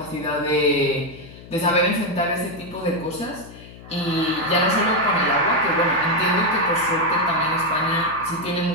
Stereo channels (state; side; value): noise; left; hum, 18 dB below the sound